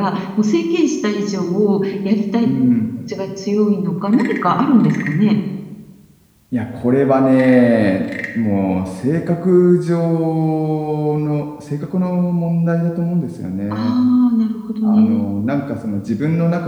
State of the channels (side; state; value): both; identical; correlation 1.00